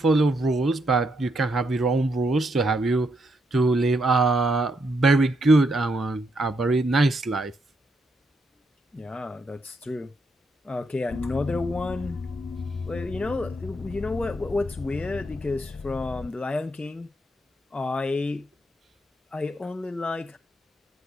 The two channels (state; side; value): normal; both; correlation 0.78